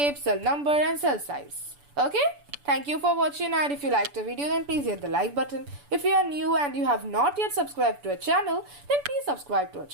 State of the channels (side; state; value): left; late; 6.9 ms